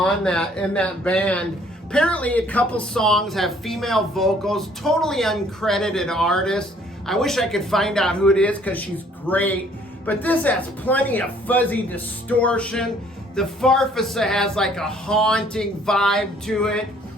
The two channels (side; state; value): both; normal; correlation 0.60